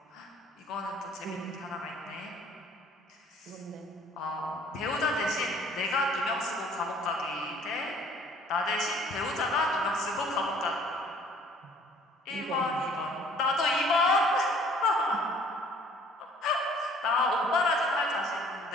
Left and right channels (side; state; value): both; normal; correlation 0.55